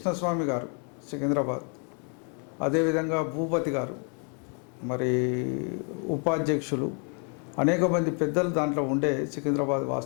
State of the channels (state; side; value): quieter; right; 39.6 dB